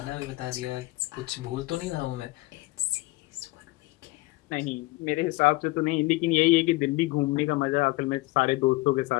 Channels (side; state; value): right; quieter; 21.4 dB